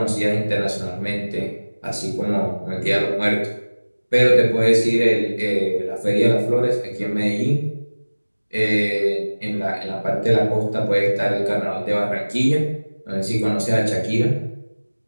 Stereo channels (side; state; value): both; inverted; correlation -1.00